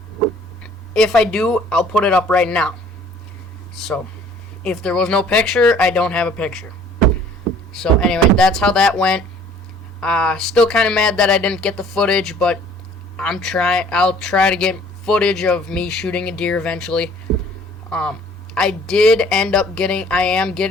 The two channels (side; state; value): both; normal; correlation 0.54